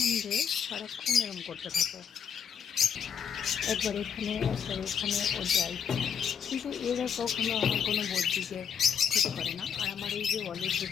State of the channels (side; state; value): right; quieter; 7.6 dB